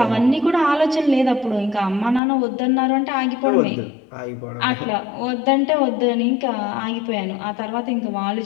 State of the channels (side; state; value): right; drops out; at 2.2 s